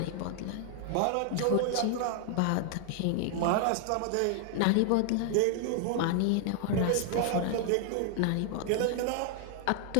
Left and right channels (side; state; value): both; different; correlation 0.00